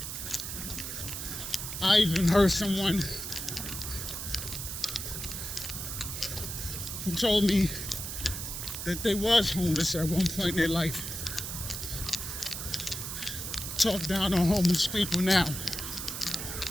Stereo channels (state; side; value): noise; right; hiss, 6 dB below the sound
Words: I even heard someone who told me that they was homeless at one point in their life. Talk down on homeless people now